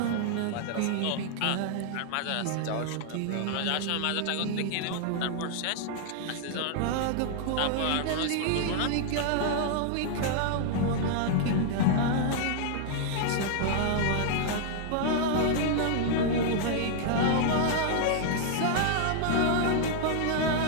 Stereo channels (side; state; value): both; different; correlation -0.01